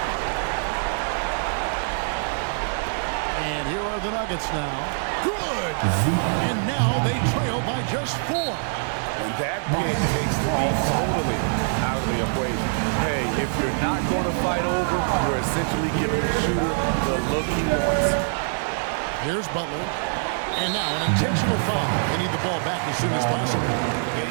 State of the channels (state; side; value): silent; left; 62 dB below the other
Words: And here are the Nuggets now. Good! And now they trail by just 4. And that pick takes the beat totally out of the equation. Hey, if you're not going to fight over, you're essentially giving the shooter the look he wants. Here's Butler. And now an intentional foul. They need the ball back as soon as possible.